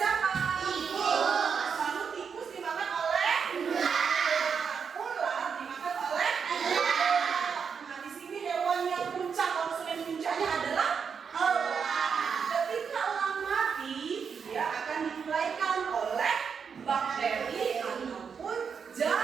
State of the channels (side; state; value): left; quieter; 6.4 dB